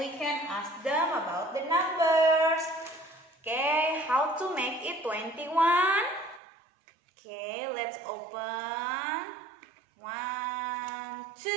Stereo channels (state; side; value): drops out; left; at 6.4 s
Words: can ask them about the numbers. Okay, how to make it 21? Okay, let's open. 1,